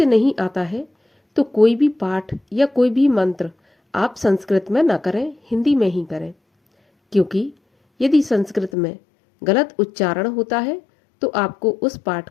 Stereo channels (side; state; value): right; drops out; at 8.7 s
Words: नहीं आता है तो कोई भी पाठ या कोई भी मंत्र आप संस्कृत में ना करें, हिंदी में ही करें। क्योंकि यदि संस्कृत में गलत उच्चारण होता है तो आपको उस पाठ